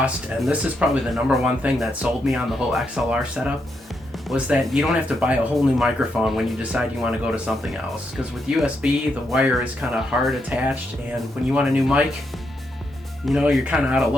and this is probably the number one thing that sold me on the whole XLR setup, was that you don't have to buy a whole new microphone when you decide you want to go to something else. Because with USB, the wire is kind of hard attached, and when you want a new mic, you're kind of out of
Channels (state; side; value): normal; both; correlation 0.81